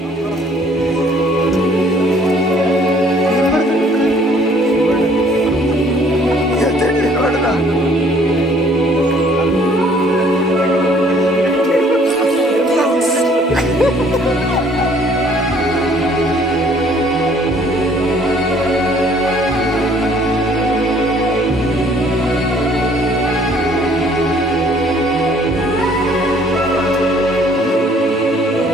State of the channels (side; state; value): both; normal; correlation 0.59